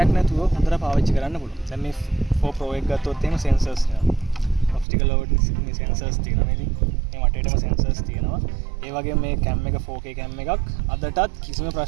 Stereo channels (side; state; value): left; drops out; at 4.9 s